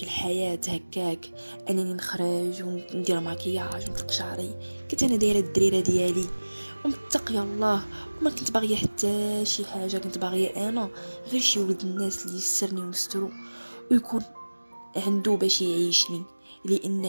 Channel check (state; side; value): inverted; both; correlation -1.00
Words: الحياه هكاك، انني نخرج وندير مكياج ونطلق شعري. كنت انا دايره الدريره ديالي ومتقيه الله، وما كنت باغيه حتى شي حاجه. كنت باغيه انا غير شي ولد الناس اللي يسرني ونسترو ويكون عنده باش يعيشني،